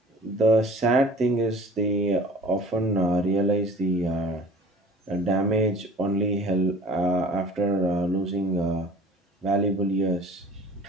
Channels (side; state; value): both; normal; correlation 0.46